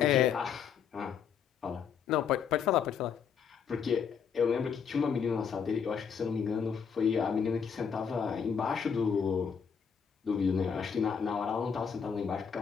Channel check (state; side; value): quieter; right; 6.9 dB